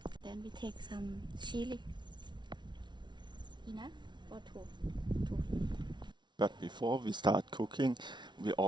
Then we take some chili. Enough or two? But before we start cooking, we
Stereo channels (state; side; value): late; left; 0.22 ms